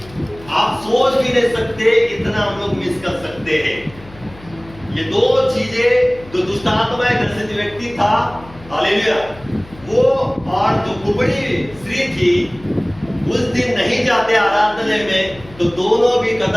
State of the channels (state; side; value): noise; left; hum, 20 dB below the sound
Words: आप सोच भी नहीं सकते इतना हम लोग मिस कर सकते हैं। ये दो चीजें, जो दुष्ट आत्मा ग्रसित व्यक्ति था, हालेलुया, वो और जो कुबड़ी स्त्री थी, उस दिन नहीं जाते आराधनालय में तो दोनों भी